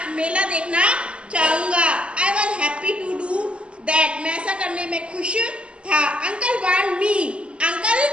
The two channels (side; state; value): left; late; 0.055 ms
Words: मेला देखना चाहूंगा. I was happy to do that. मैं ऐसा करने में खुश था. Uncle want me.